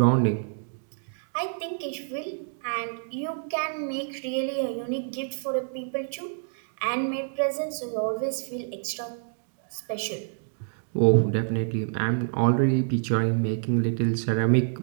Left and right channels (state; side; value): silent; left; digital silence